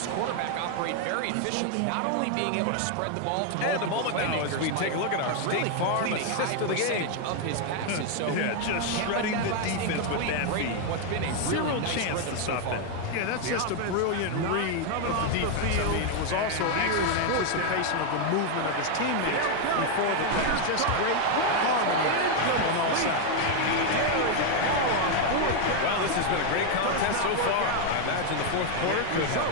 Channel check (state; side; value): different; both; correlation 0.01